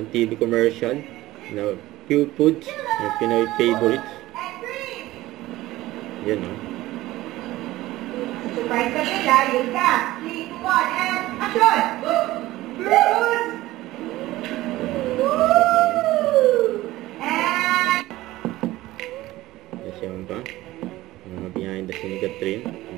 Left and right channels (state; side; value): quieter; left; 17.1 dB